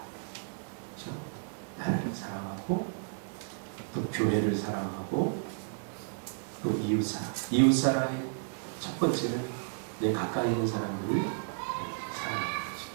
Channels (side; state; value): left; silent; digital silence